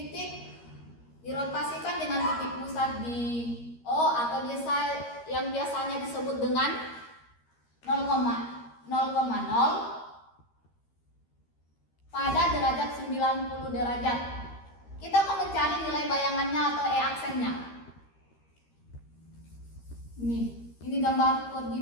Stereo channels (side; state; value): right; late; 13 ms